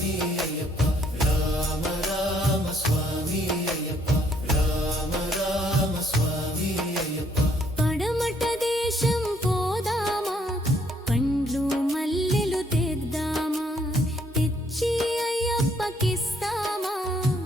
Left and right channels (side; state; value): both; normal; correlation 0.67